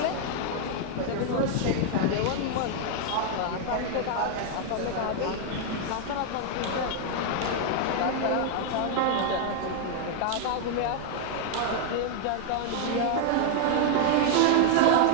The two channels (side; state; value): both; different; correlation 0.00